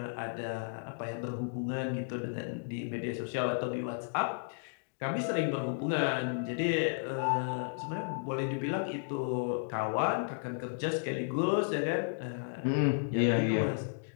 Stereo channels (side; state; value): right; silent; digital silence